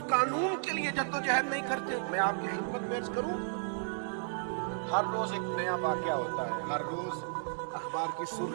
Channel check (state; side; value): silent; left; 55 dB below the other